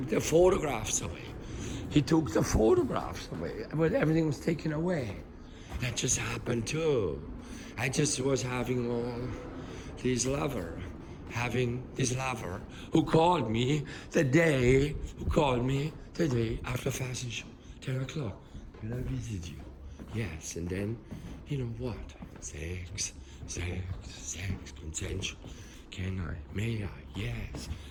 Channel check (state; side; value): identical; both; correlation 1.00